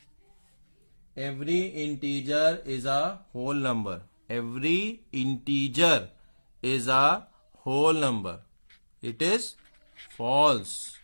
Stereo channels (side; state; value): both; inverted; correlation -1.00